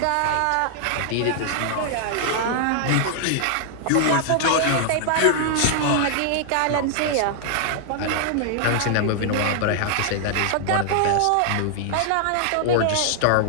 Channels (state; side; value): different; both; correlation -0.01